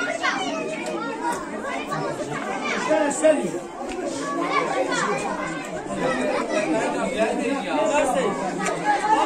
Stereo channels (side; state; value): both; identical; correlation 1.00